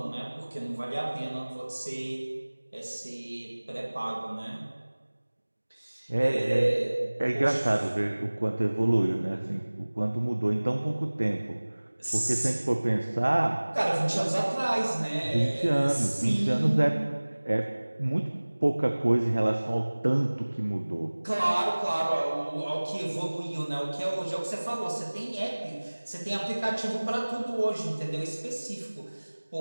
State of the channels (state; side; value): inverted; both; correlation -1.00